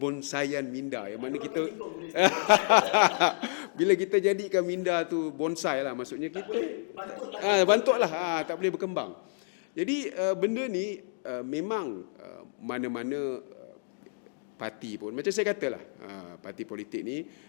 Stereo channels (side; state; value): right; silent; digital silence